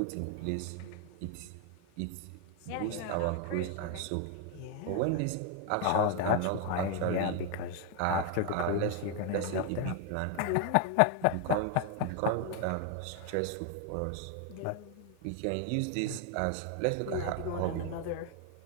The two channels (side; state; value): both; different; correlation 0.00